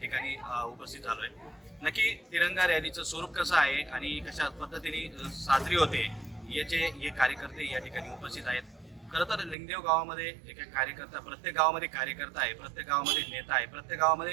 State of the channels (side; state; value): left; drops out; at 9.6 s